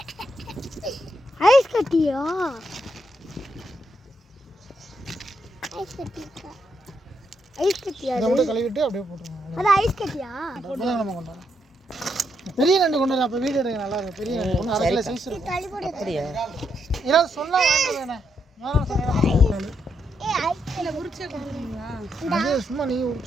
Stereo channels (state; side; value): normal; both; correlation 0.79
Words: ஐஸ் கட்டியா? ஐஸ் கட்டியா? ஐஸ் கட்டியா? இதை மட்டும் கழுவிட்டு அப்படியே போட்டுருவோம். அது ஐஸ் கட்டியா? அப்பதான் நம்ம கொண்டு வரோம். பெரிய நண்டு கொண்டு வர. அப்போ வீடு எடுக்க நல்லா இருக்கும். பெரிய நண்டு ஒன்று 1/2 கிலோ சைஸ் இருக்கும். அப்படியா? இறால் சொன்னா வாங்கிட்டு வேணே. இல்ல உரிச்சே கொடுக்குறீங்களா? சும்மா நீ